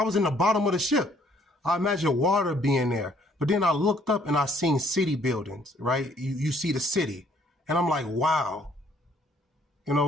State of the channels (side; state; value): both; normal; correlation 0.64